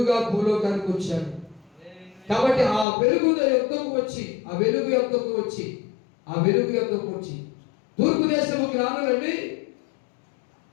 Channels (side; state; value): right; drops out; at 2.9 s